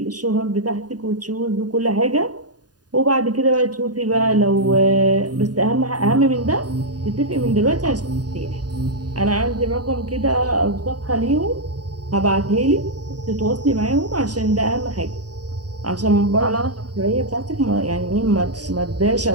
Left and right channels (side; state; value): left; late; 0.69 ms